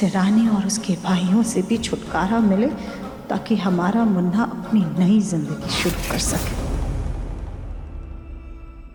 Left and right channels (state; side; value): identical; both; correlation 1.00